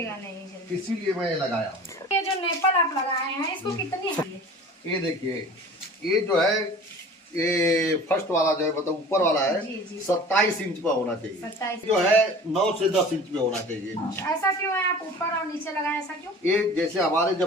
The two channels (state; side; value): normal; both; correlation 0.42